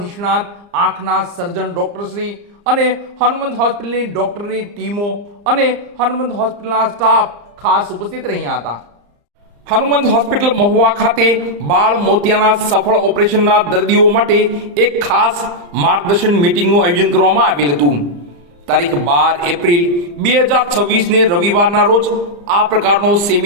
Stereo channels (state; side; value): late; left; 35 ms